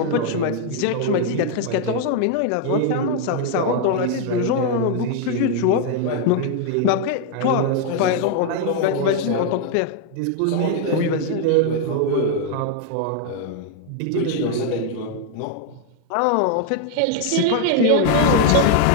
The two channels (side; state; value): both; different; correlation 0.00